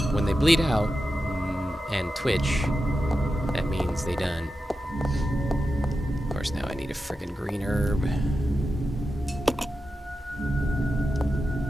When they bleed out and twitch, that means they done. Of course, now I need a friggin' green herb.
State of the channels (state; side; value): normal; both; correlation 0.91